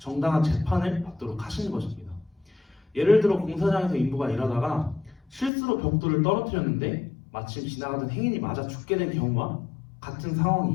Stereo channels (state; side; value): drops out; right; at 5.5 s